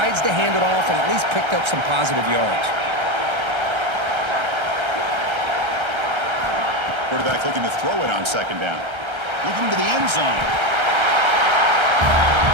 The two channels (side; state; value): left; late; 1.3 ms